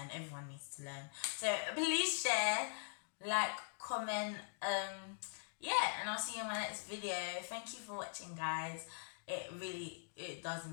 Everyone needs to learn. So please share, like, comment, yeah, and I'll see you in my next video. Thank you for watching, guys. It does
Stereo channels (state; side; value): silent; right; digital silence